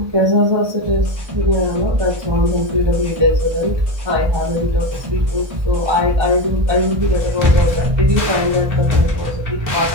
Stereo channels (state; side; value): late; left; 1.2 ms